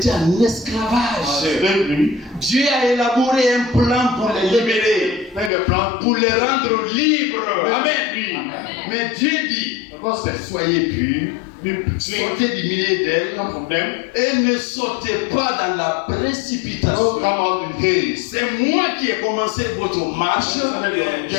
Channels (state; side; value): drops out; right; at 5.5 s